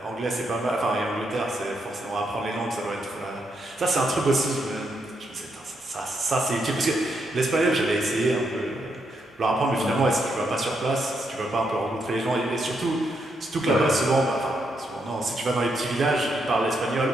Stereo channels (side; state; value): both; normal; correlation 0.79